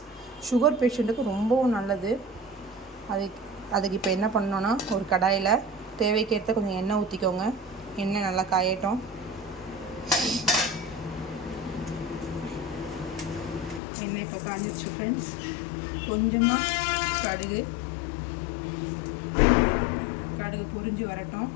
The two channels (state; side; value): drops out; right; at 13.8 s